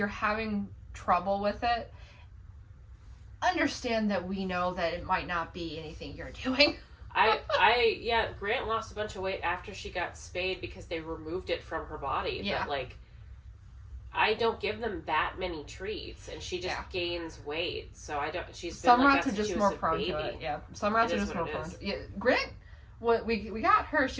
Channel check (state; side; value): identical; both; correlation 1.00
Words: having trouble with it, understand that we know that it might not be anything you're doing. Grant lost a bunch of weight after she got spayed because they removed it from her body. Yeah. But like, I don't give them that many treats, and she just gains weight. So I don't. Some rats are just more prone to it. Yeah, some rats are just more prone to it. Yeah, Grant. We got her.